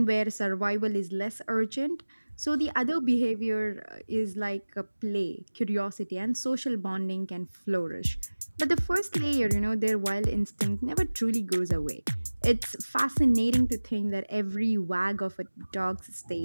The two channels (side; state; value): both; inverted; correlation -1.00